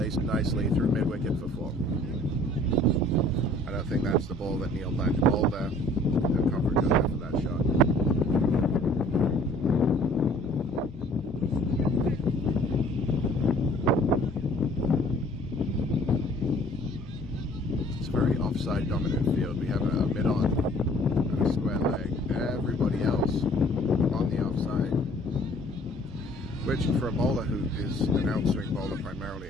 nicely through mid-wicket for 4. I don't think that's the ball that Neil planned to bowl there. No coverage on there for that shot. It's a very offside dominant field. We have a mid-on and a square leg. Everybody else on the offside. Which for a bowler who is an outswing bowler primarily,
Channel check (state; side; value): normal; both; correlation 0.54